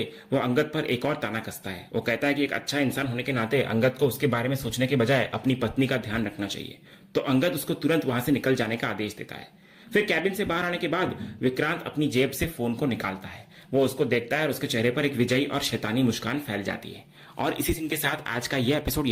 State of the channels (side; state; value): both; identical; correlation 1.00